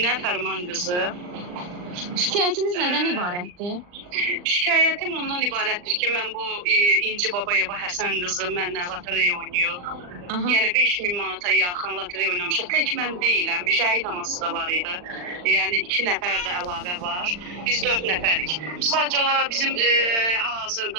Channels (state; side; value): late; left; 39 ms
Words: Fərman qızı. Şikayətiniz nədən ibarətdir? Şikayətim ondan ibarətdir ki, mən bu İnci Babayeva Həsən qızı mənlə lotereya oynayır. Aha. Yəni 5000 manata yaxın lotereya oynamışıq. Tək mən deyiləm, bir şəhid anası da var idi. Yəni 2 nəfər də əlavə var. Biz 4 nəfərik. Sadəcə olaraq bizim